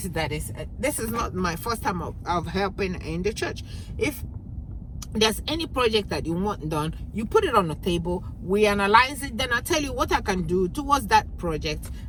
that is, this is not my first time of helping in the church. If there's any project that you want done, you put it on the table, we analyze it, then I'll tell you what I can do towards that project,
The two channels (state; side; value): identical; both; correlation 1.00